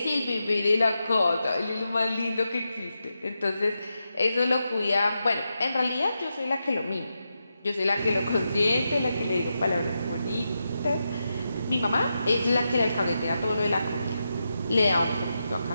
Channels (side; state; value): both; inverted; correlation -0.87